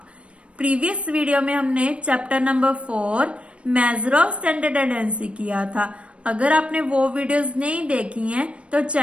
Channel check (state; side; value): late; left; 0.060 ms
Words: प्रीवियस वीडियो में हमने chapter number 4 major of centre tendency किया था। अगर आपने वो वीडियोस नहीं देखी हैं तो